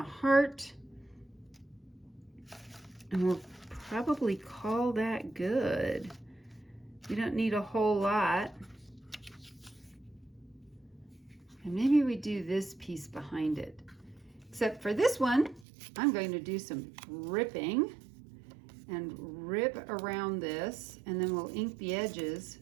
heart. And we'll probably call that good. We don't need a whole lot. And maybe we do this piece behind it. Except for this one, I'm going to do some ripping and rip around this, and then we'll ink the edges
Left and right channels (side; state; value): left; drops out; at 15.7 s